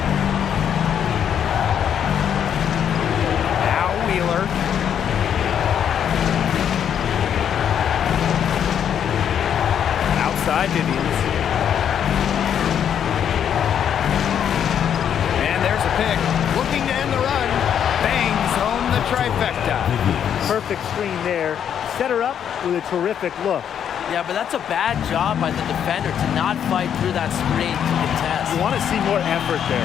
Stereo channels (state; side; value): quieter; right; 8.9 dB